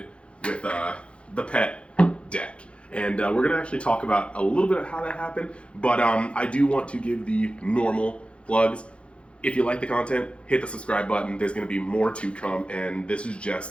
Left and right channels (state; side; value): late; right; 0.059 ms